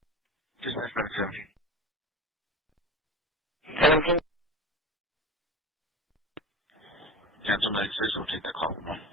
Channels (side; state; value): both; normal; correlation 0.33